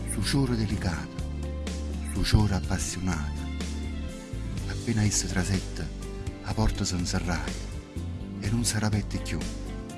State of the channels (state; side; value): identical; both; correlation 1.00